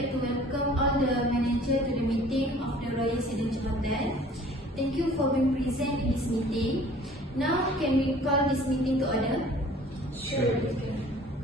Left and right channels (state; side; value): normal; both; correlation 0.50